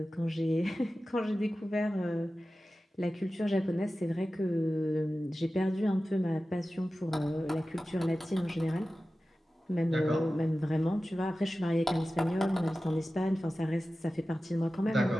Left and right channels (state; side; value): normal; both; correlation 0.95